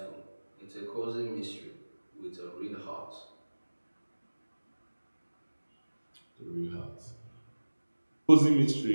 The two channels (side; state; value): both; inverted; correlation -1.00